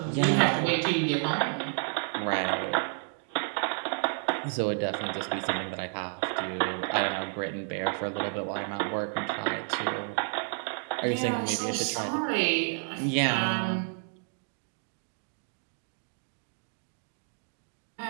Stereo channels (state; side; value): silent; left; 57 dB below the other